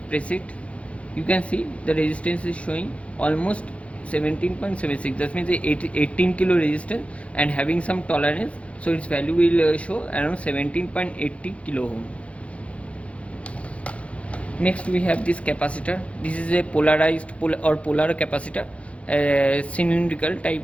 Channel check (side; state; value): right; late; 0.063 ms